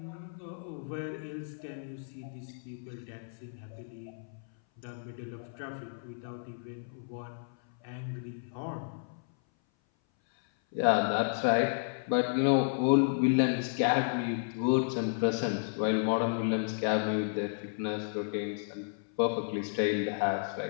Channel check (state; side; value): silent; right; 56 dB below the other